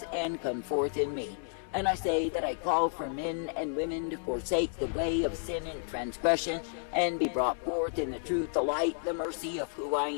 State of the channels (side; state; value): right; silent; digital silence